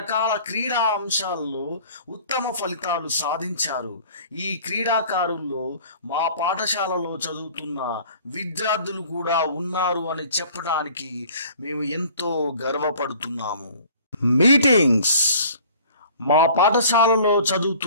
క్రీడా అంశాల్లో ఉత్తమ ఫలితాలు సాధించారు. ఈ క్రీడాకారుల్లో మా పాఠశాలలో చదువుతున్న విద్యార్థులు కూడా ఉన్నారు అని చెప్పడానికి మేము ఎంతో గర్వపడుతున్నాము. మీటింగ్స్. మా పాఠశాలలో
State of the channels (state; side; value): inverted; both; correlation -0.50